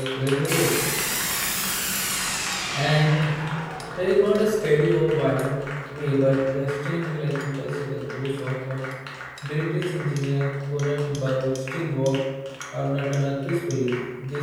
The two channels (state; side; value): identical; both; correlation 1.00